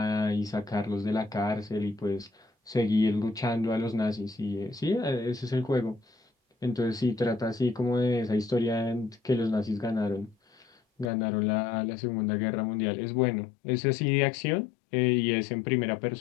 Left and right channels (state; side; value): drops out; right; at 11.1 s